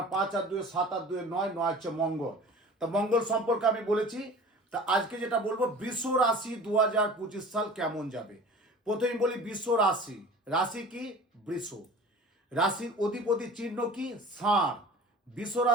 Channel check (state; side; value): normal; both; correlation 0.41